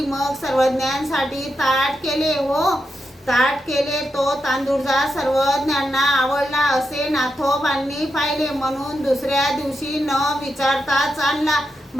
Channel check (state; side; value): normal; both; correlation 0.86